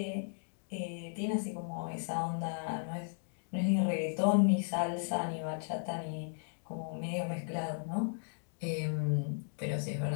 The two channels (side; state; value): right; silent; digital silence